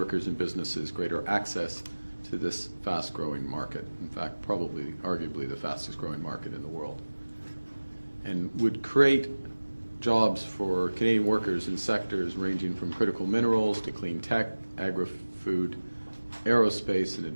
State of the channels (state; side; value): inverted; both; correlation -1.00